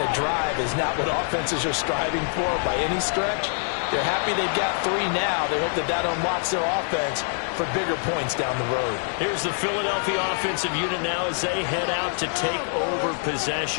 of drive is not what offenses are striving for by any stretch. They're happy they've got 3 now. They hope that that unlocks their offense for bigger points down the road. Here's the Philadelphia offensive unit now as they head out to take over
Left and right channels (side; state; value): right; silent; 62 dB below the other